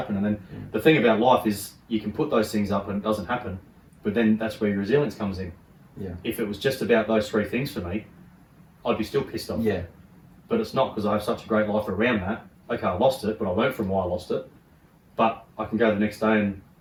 And then the thing about life is you can put those things up and it doesn't happen, but then that's where your resilience comes in. Yeah. If it was just about those three things for me, I'd be still pissed off. Yeah. But it's not, because I have such a great life around that. Okay, I lost it, but I learned from why I lost it. But I can go the next day and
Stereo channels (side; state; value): both; identical; correlation 1.00